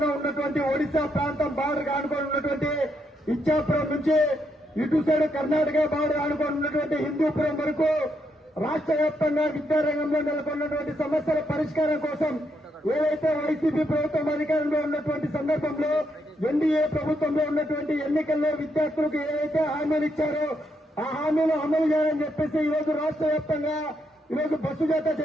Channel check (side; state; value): both; normal; correlation 0.78